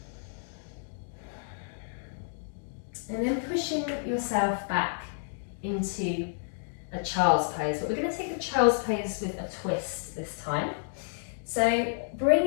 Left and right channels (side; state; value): right; silent; digital silence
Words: And then pushing yourself back into a child's pose, but we're going to take the child's pose with a twist this time. So bring